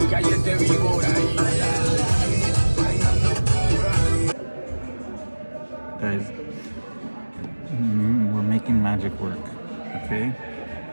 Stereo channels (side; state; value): both; inverted; correlation -1.00